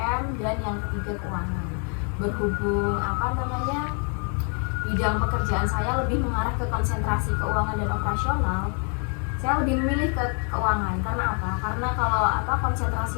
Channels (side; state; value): right; quieter; 39.4 dB